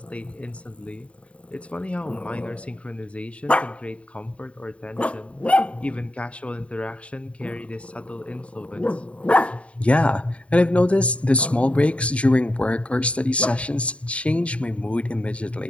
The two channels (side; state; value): right; late; 0.063 ms